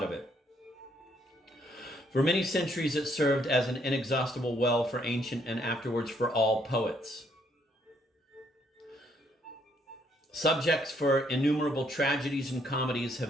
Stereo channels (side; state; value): both; normal; correlation 0.70